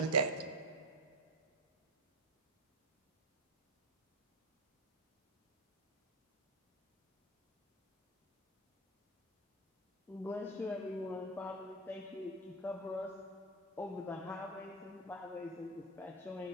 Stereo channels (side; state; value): both; normal; correlation 0.14